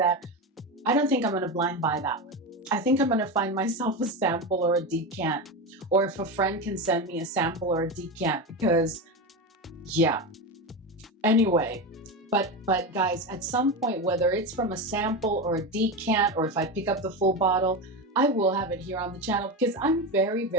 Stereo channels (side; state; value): both; normal; correlation 0.18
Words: I don't think I'm going to blind buy that one. I think I'm going to find myself a sample or a decant, or if a friend can send me a sample or a decant, because yeah. Anyway, but guys, at some point, whether it's from a sample or a decant, or if I pick up the full bottle, I will have it here on the channel, because I'm very,